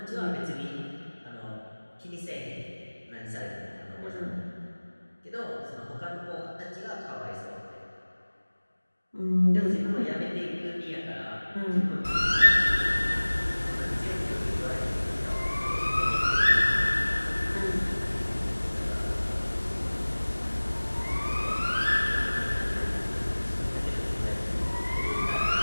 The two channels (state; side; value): inverted; both; correlation -1.00